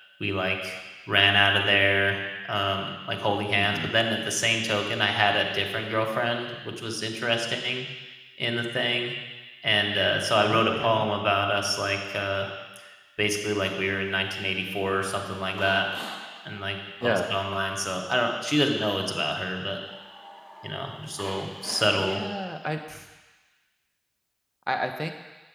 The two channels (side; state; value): both; identical; correlation 1.00